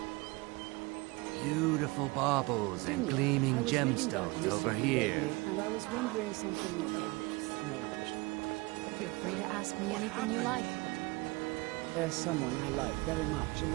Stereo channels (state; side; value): quieter; left; 24.6 dB